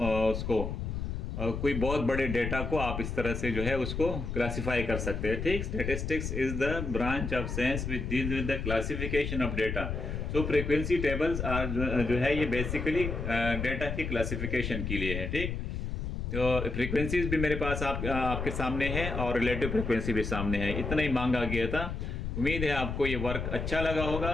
उसको कोई बहुत बड़े डेटा को आप इस तरह से जो है उसको क्लासिफाई कर सकते हैं, ठीक। Statistics is the branch of science which deals with the classification of data. So frequency tables are जो है ये बेसिकली डेटा की क्लासिफिकेशन के लिए है, ठीक। तो फ्रीक्वेंसीज भी मेरे पास आपके सामने है और रिलेटिव फ्रीक्वेंसी भी सामने है। इतना ही मांगा गया था। उम्मीद है आपको ये वर्क अच्छा लगा होगा,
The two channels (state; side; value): noise; left; rumble, 4 dB below the sound